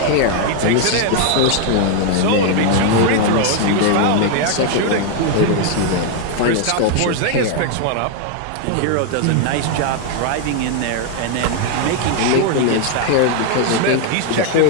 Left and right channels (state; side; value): different; both; correlation 0.00